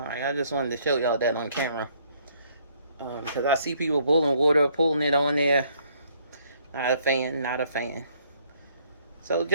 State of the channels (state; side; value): inverted; both; correlation -0.65